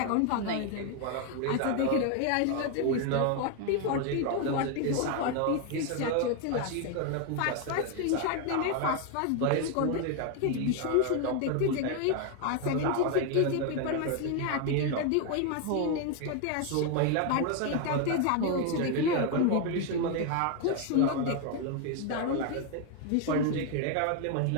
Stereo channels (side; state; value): both; different; correlation 0.01